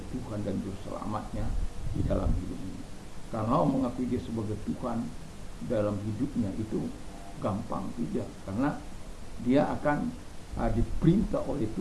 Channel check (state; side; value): identical; both; correlation 1.00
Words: Tuhan dan Juru Selamatnya di dalam hidup ini. Kalau mengakui Dia sebagai Tuhan dalam hidupnya itu gampang, tidak, karena dia akan diperintah oleh